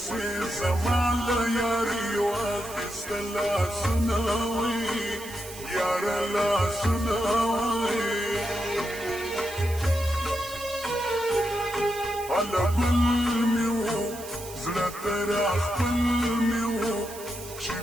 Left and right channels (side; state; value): right; noise; hiss, 14 dB below the sound